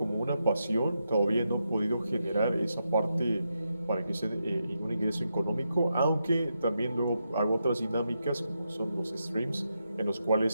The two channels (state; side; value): inverted; both; correlation -0.85